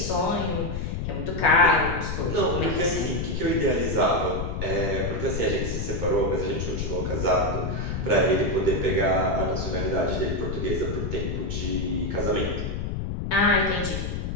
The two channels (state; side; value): noise; left; rumble, 3 dB below the sound